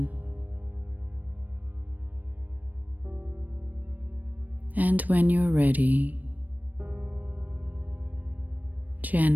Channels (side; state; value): left; late; 0.083 ms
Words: And when you're ready,